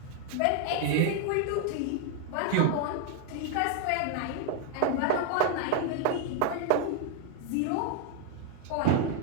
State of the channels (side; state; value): both; different; correlation 0.00